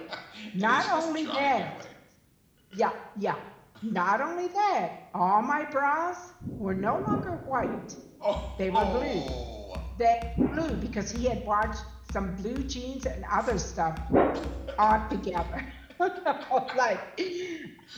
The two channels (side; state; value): both; identical; correlation 1.00